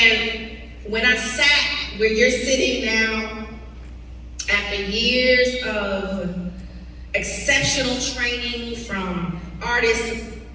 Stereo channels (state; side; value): identical; both; correlation 1.00